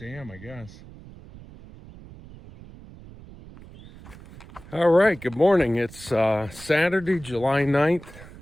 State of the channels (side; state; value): right; noise; rumble, 19 dB below the sound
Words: I guess. All right, good morning. It's Saturday, July 9th.